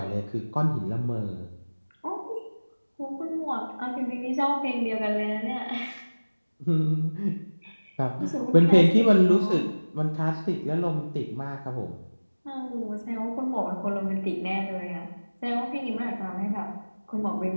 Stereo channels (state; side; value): inverted; both; correlation -1.00